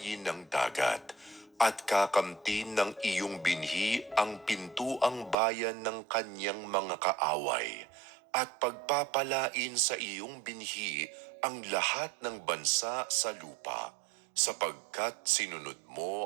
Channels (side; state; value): left; drops out; at 5.4 s